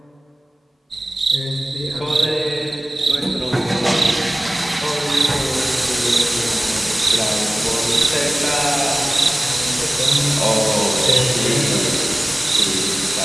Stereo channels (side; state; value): both; normal; correlation 0.97